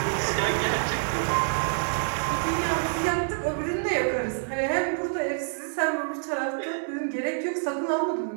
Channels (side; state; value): left; silent; digital silence